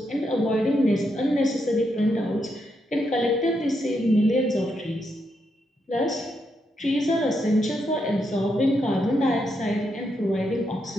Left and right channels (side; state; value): both; normal; correlation 0.81